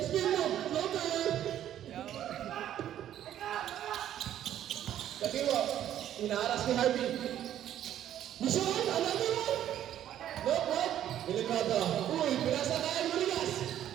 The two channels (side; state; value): left; quieter; 11.3 dB